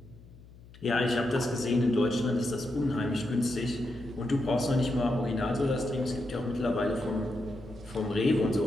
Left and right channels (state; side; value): noise; left; hum, 21 dB below the sound